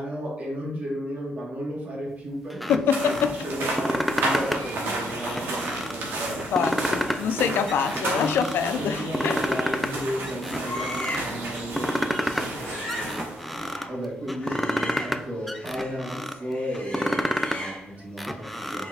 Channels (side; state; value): both; normal; correlation 0.73